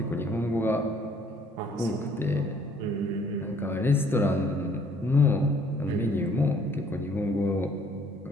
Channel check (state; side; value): normal; both; correlation 0.60